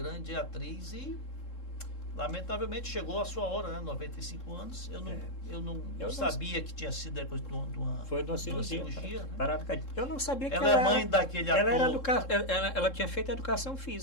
atriz e lamentavelmente chegou a sua hora, né? 95 anos. Eu não sabia que tinha sido depois de uma Foi de uma cirurgia. né? Parada cardíaca. Eu não sabia que Ela é mãe daquele ator. Ela tinha feito educação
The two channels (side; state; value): right; late; 3.7 ms